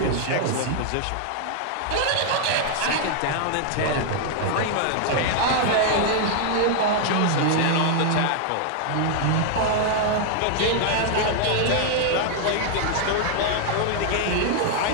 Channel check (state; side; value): different; both; correlation 0.00